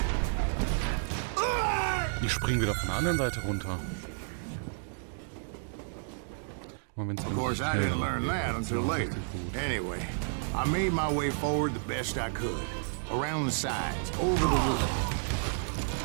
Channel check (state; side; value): silent; left; digital silence